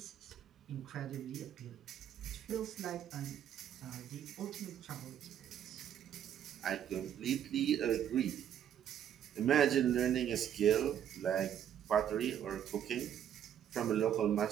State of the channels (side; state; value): left; quieter; 9.8 dB